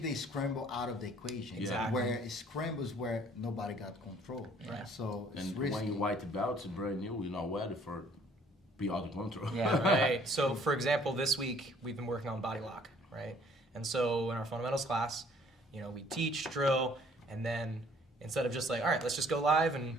the scramble out of the equation. Exactly. Where scramble is where nobody got control. Right. So it's and risky. when you white belts, brand new, you're not ready for be out of control. Yeah. Right. So, for example, this week we've been working on body lock, right? And so in our fundamentals class, you know, we teach, drill, and then instead of just like, all right, let's just go live and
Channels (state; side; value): normal; both; correlation 0.58